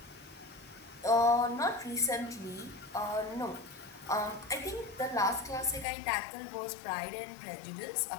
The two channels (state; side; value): drops out; right; at 5.9 s